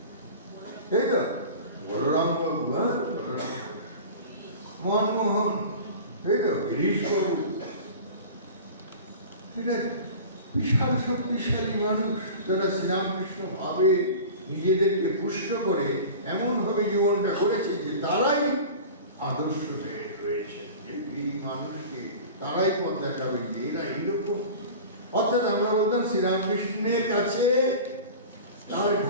তাই তো? বলরাম বাবু, মনমোহন, তাই তো? গিরিশ বাবু, বিশাল শক্তিশালী মানুষ, যারা শ্রীরামকৃষ্ণ ভাবে নিজেদেরকে পুষ্ট করে এমন ভাবে জীবনটা করেছে যে তারাই আদর্শ হয়ে রয়েছে। এই মানুষকে তারাই পথ দেখাবে যে এরা এইরকম। অর্থাৎ আমরা বলতাম শ্রীরামকৃষ্ণের কাছে, তার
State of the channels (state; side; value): inverted; both; correlation -0.36